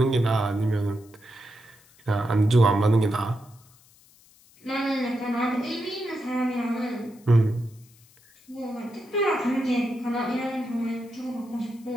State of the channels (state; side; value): noise; left; hiss, 28 dB below the sound